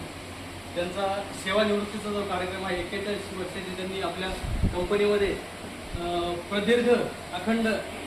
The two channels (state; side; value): identical; both; correlation 1.00